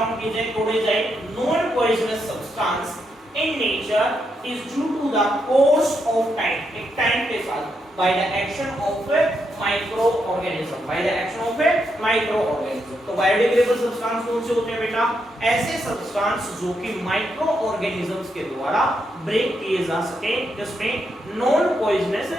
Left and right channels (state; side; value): normal; both; correlation 0.81